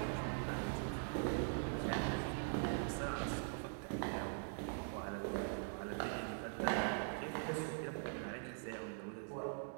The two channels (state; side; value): silent; left; digital silence